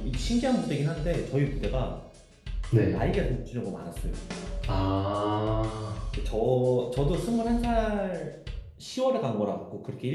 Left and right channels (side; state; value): both; identical; correlation 1.00